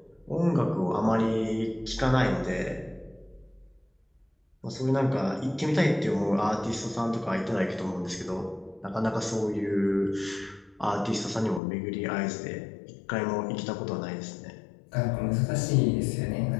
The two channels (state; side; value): drops out; right; at 11.6 s